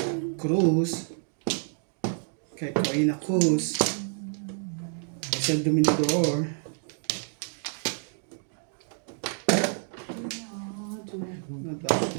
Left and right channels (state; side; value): silent; left; 59 dB below the other